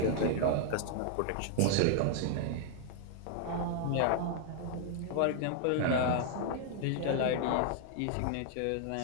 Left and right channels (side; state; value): both; different; correlation 0.00